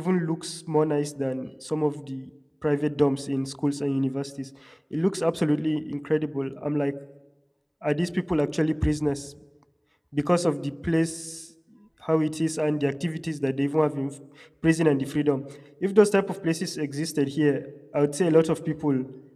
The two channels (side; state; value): both; identical; correlation 1.00